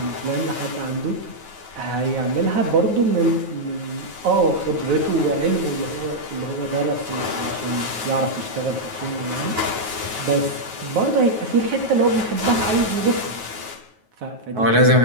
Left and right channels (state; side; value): late; left; 9.3 ms